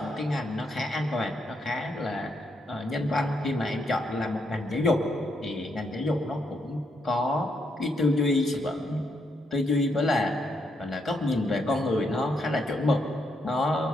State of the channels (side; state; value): both; normal; correlation 0.78